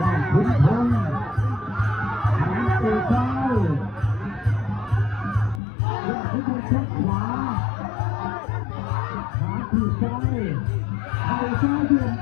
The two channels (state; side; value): drops out; right; at 5.6 s